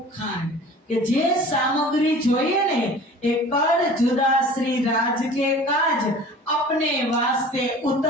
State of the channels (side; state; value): both; normal; correlation 0.43